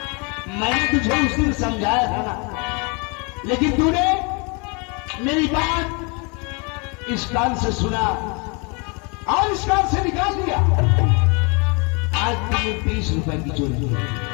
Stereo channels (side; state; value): right; quieter; 31.9 dB